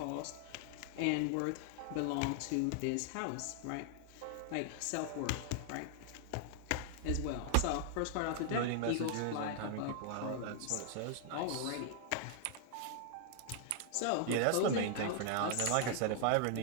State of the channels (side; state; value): both; different; correlation -0.01